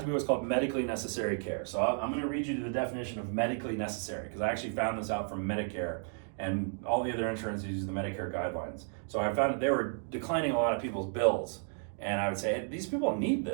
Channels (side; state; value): left; silent; 56 dB below the other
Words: to be what's called medically necessary care. So I'm going to read you the definition of medically necessary, because I actually found this out from Medicare, and all the other insurances use the Medicare guidelines. So I found that they were declining a lot of people's bills, and I would say, hey, these people need